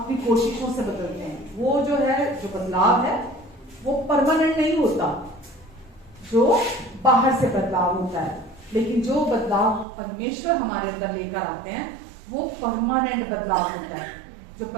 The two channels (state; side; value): drops out; left; at 9.9 s